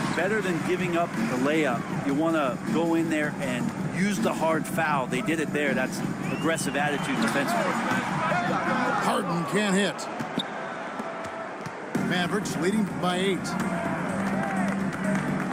better than giving up the layup. You want to go in there and use the hard foul. They did it there. That's aggressive attitude defensively. Harden can't hit. Mavericks leading by 8.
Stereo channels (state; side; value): identical; both; correlation 1.00